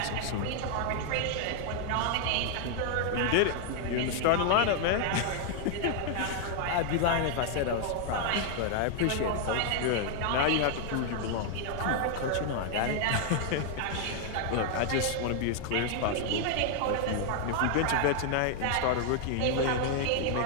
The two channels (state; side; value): different; both; correlation 0.00